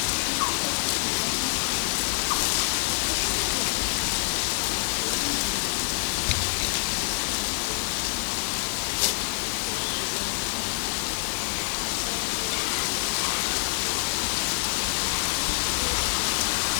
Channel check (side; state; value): right; silent; 61 dB below the other